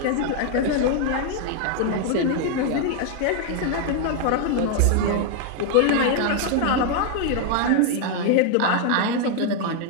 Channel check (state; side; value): different; both; correlation 0.00